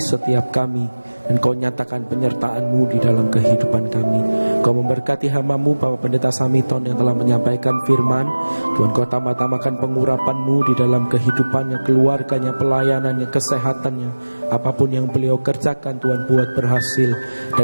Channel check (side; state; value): both; inverted; correlation -1.00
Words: setiap kami, dan Kau nyatakan penyertaan-Mu di dalam kehidupan kami. Kau memberkati hamba-Mu Bapak Pendeta Samiton yang telah menyampaikan firman. Tuhan Kau tambah-tambahkan pengurapan-Mu di dalam kehidupannya, keluarganya, pelayanannya, kesehatannya. Apapun yang beliau kerjakan Tuhan buat berhasil,